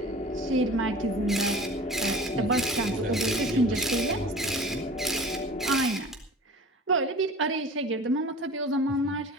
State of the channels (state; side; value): normal; both; correlation 0.41